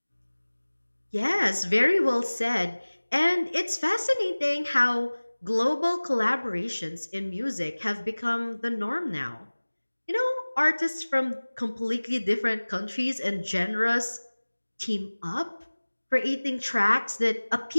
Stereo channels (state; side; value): inverted; both; correlation -1.00